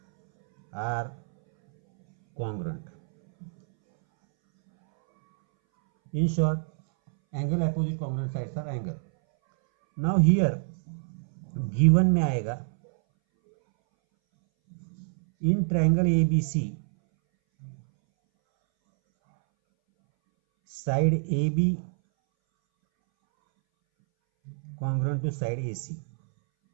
are congruent. In short, angle opposite congruent sides are angle. Now here given में आएगा in triangle ABC side AB congruent to side AC.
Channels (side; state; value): left; silent; 61 dB below the other